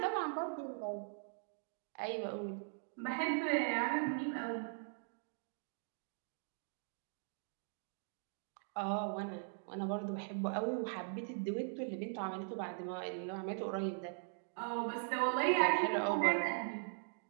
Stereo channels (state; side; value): silent; left; digital silence